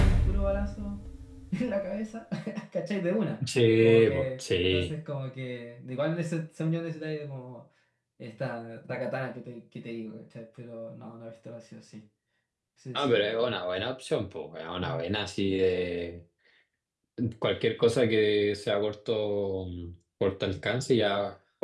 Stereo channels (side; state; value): both; identical; correlation 1.00